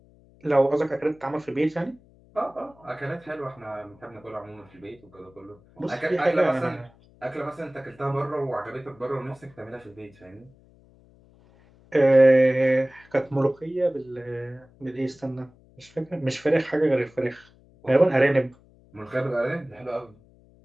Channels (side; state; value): left; noise; hum, 28 dB below the sound